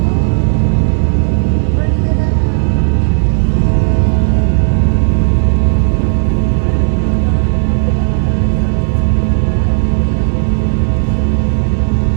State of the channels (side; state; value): left; silent; digital silence